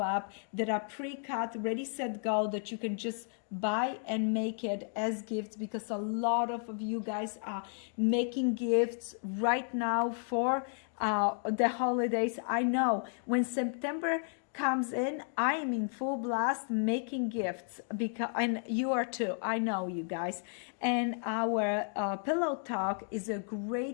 that are pre-cut, ready, set, go, that you can just buy and make it as gifts, because a lot of you guys are making gifts right now for the holidays. I know when September comes in, I am in full blast making gifts, because, and you are too, I know you guys. And our Pillow Talk is a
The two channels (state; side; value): silent; right; 56 dB below the other